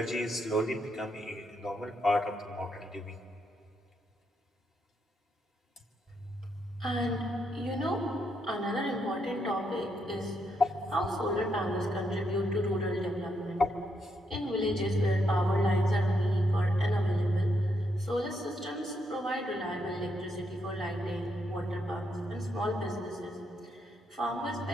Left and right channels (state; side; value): normal; both; correlation 0.78